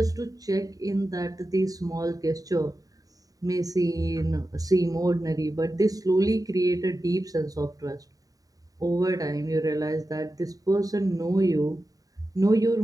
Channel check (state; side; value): late; left; 0.18 ms